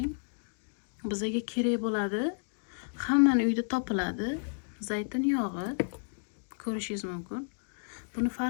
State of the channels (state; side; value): silent; right; digital silence